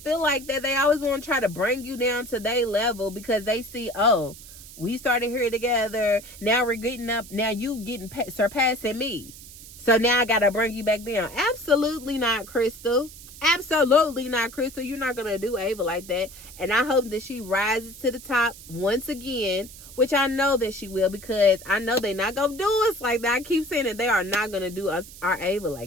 like that, they always want to try to bring you down to their level because they see, oh, we started here together. Now we're getting up. Now you getting surpassing me. So now I got to bring you back down. Absolutely not, Crystal. Absolutely not, Crystal. You're not going to do Ava like that. And I hope that she rises to the top once again, which I know that she will, because I know they're not going to do us like that. I keep saying that they are not going to do our Ava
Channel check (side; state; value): right; noise; hiss, 17 dB below the sound